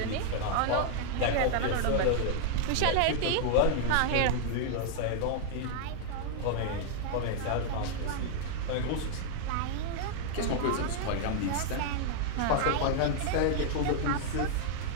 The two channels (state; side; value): different; both; correlation -0.01